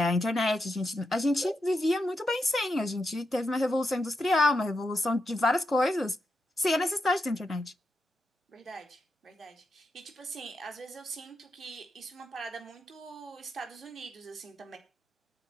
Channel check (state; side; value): normal; both; correlation 0.85